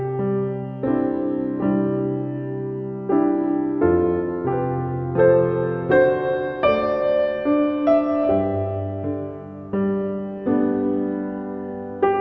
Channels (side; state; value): both; identical; correlation 1.00